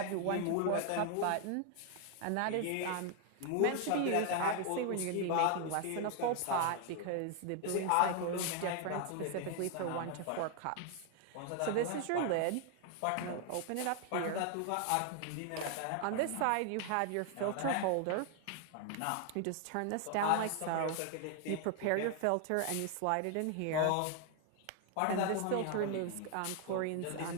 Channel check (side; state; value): both; different; correlation 0.00